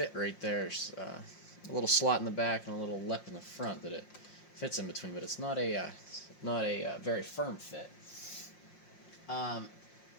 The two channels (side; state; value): right; late; 5.6 ms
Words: right there. There's a little slot in the back and a little lip in the front that it fits in between, but it's not a very firm fit.